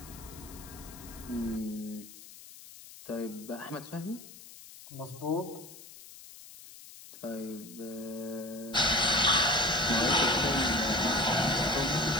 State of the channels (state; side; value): noise; left; hiss, 17 dB below the sound